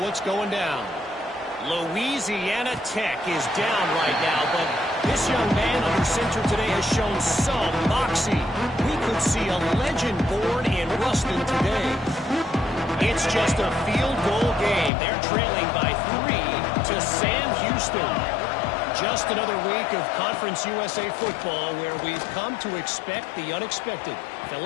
going down. Louisiana Tech is down right now, but this young man under center today has shown some moxie. We could see a legend born in Ruston today. It's just a field goal game. They're trailing by 3 to Sam Houston. Just another week of Conference USA football where we've come to expect the unexpected.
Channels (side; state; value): right; drops out; at 14.9 s